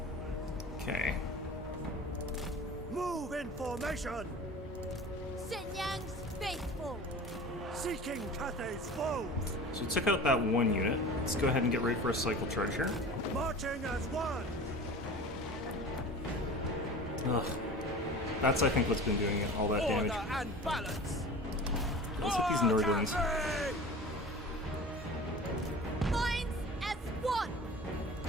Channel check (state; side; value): normal; both; correlation 0.37